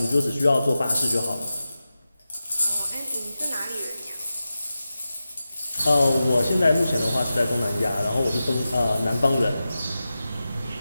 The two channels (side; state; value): both; inverted; correlation -0.93